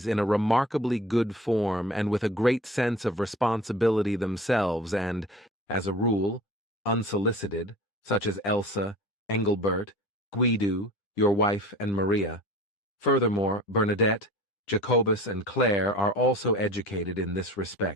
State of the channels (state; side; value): normal; both; correlation 0.40